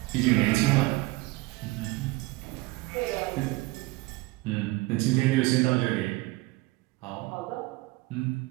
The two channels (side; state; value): left; quieter; 21.6 dB